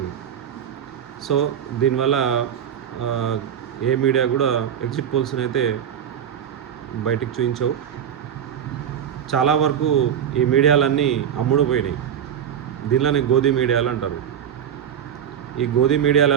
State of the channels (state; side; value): quieter; left; 9.0 dB